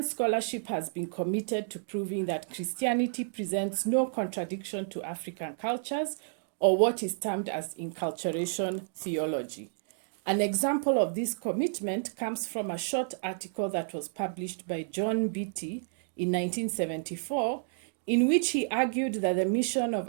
scholarship has been committed to proving that Christianity presents no contradiction to African cultures or what is termed as inculturation theology. An example of this commitment comes from a short article that was published by John Beattie in 1974, in which he argued that the mission of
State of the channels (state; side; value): silent; left; digital silence